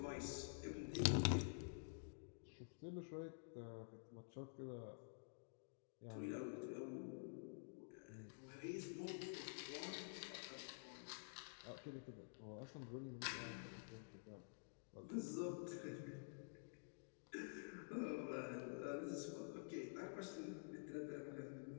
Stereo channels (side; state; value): right; silent; digital silence